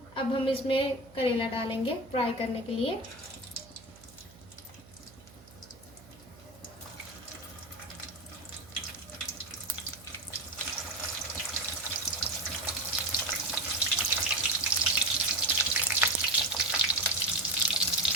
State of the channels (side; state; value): right; noise; hum, 22 dB below the sound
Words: अब हम इसमें करेला डालेंगे फ्राई करने के लिए।